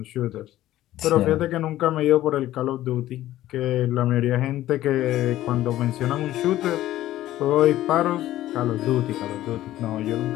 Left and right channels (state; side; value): quieter; right; 14.3 dB